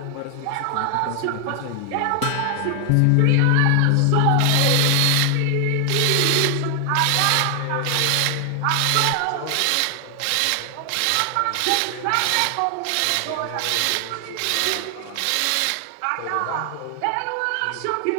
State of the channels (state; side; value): different; both; correlation 0.00